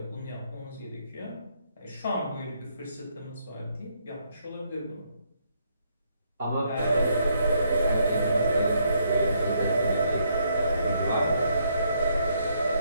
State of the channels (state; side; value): inverted; both; correlation -0.73